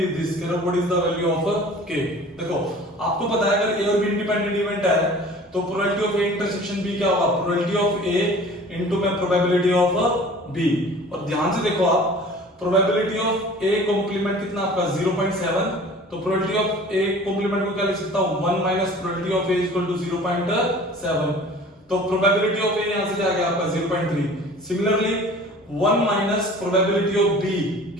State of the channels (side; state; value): both; normal; correlation 0.45